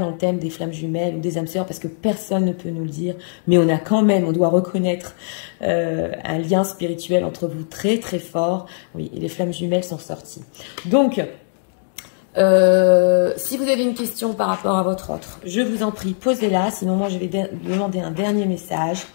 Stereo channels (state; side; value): silent; right; digital silence